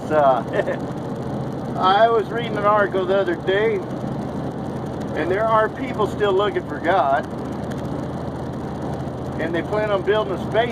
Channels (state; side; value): identical; both; correlation 1.00